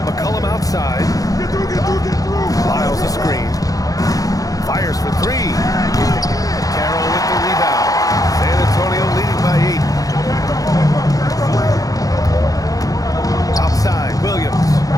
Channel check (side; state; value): right; late; 0.17 ms